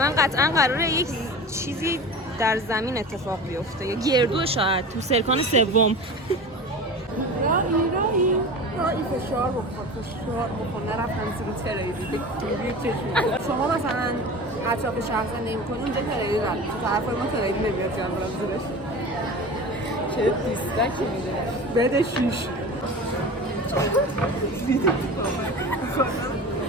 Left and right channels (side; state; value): both; normal; correlation 0.33